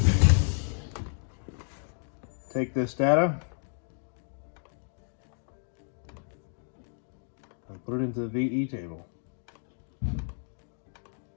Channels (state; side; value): silent; right; digital silence